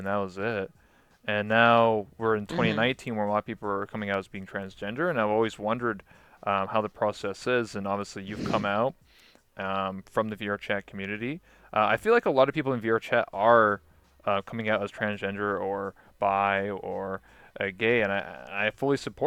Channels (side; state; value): both; identical; correlation 1.00